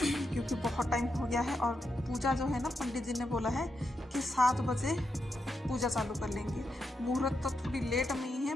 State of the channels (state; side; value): normal; both; correlation 0.84